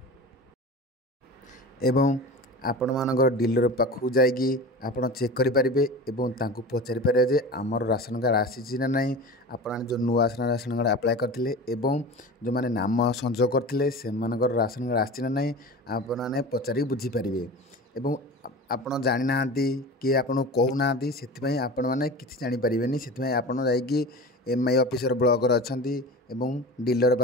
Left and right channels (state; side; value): normal; both; correlation 0.33